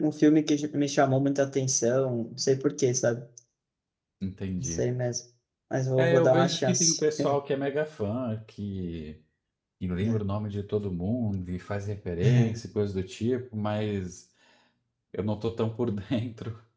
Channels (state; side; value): identical; both; correlation 1.00